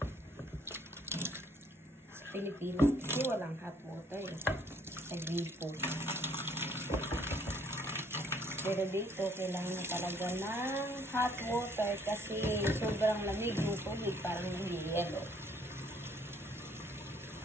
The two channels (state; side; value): normal; both; correlation 0.63